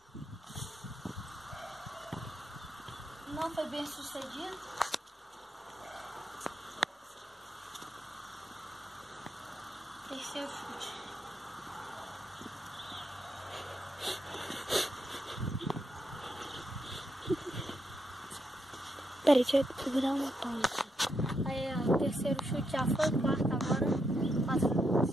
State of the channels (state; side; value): normal; both; correlation 0.81